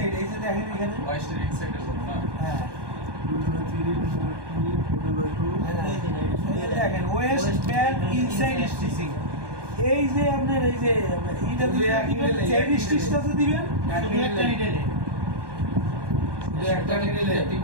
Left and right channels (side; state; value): left; late; 1.2 ms